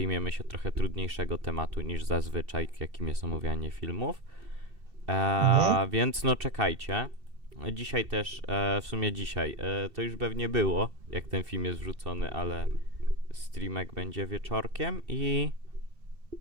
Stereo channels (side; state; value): left; late; 2.7 ms